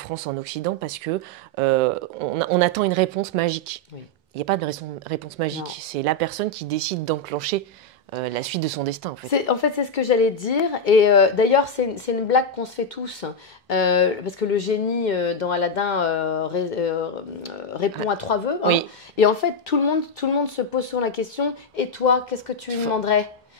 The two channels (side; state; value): both; normal; correlation 0.02